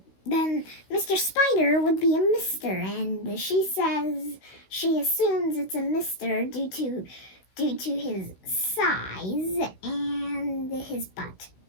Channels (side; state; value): right; late; 16 ms